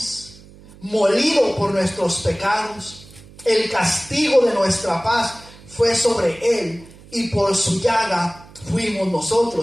molido por nuestros pecados. El castigo de nuestra paz fue sobre Él, y por su llaga fuimos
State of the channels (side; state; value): right; noise; hum, 22 dB below the sound